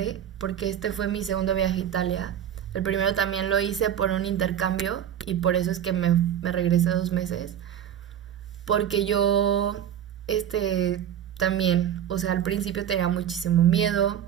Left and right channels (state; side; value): quieter; left; 9.9 dB